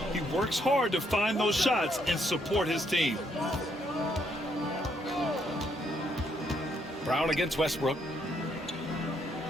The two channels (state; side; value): normal; both; correlation 0.73